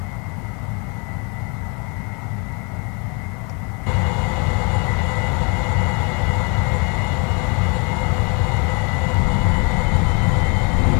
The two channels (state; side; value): quieter; right; 33.2 dB